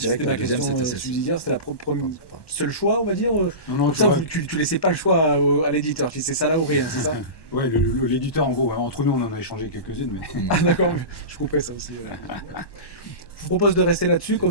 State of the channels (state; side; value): late; right; 1.1 ms